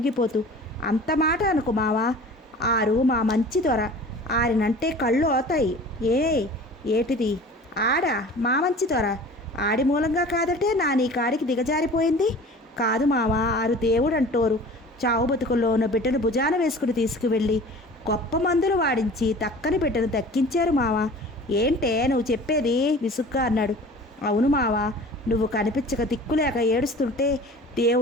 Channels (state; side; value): normal; both; correlation 0.42